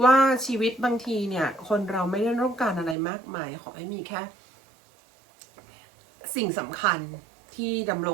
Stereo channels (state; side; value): drops out; left; at 3.0 s